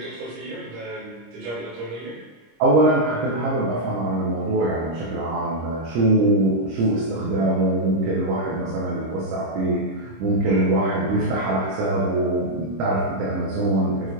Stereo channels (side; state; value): left; late; 26 ms